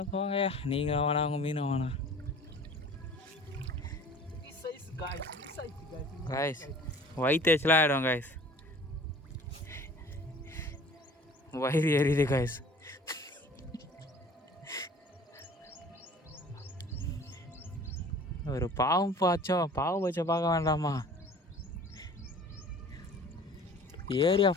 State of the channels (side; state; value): both; normal; correlation 0.47